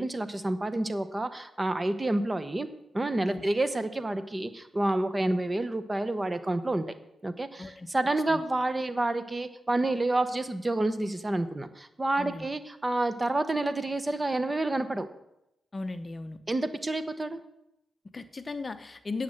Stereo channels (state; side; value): normal; both; correlation 0.96